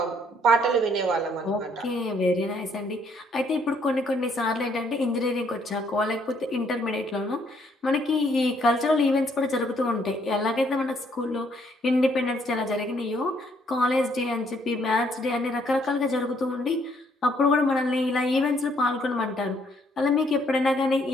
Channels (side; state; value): both; normal; correlation 0.68